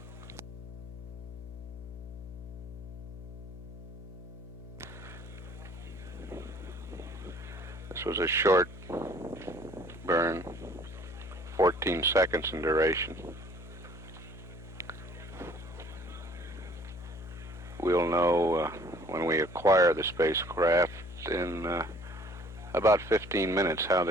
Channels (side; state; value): left; noise; hum, 13 dB below the sound